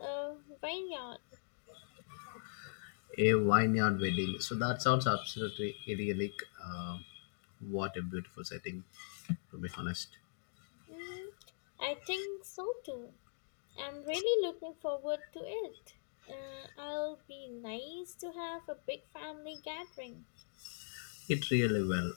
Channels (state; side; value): silent; right; digital silence